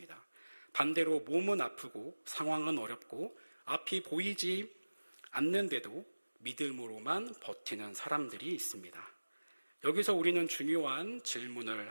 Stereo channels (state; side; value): inverted; both; correlation -1.00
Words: 반대로 몸은 아프고 상황은 어렵고 앞이 보이지 않는데도 믿음으로만 버티는 사람들이 있습니다. 여기서 우리는 중요한 질문을